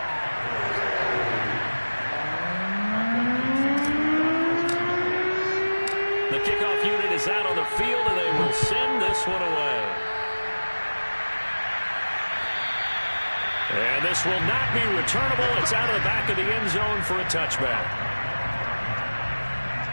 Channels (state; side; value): inverted; both; correlation -1.00